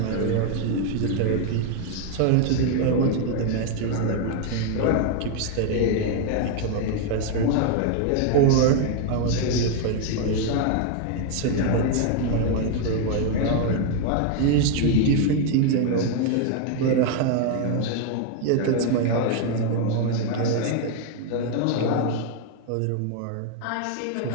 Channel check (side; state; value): both; different; correlation 0.01